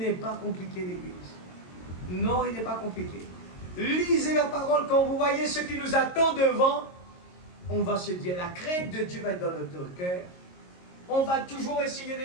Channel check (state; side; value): late; right; 22 ms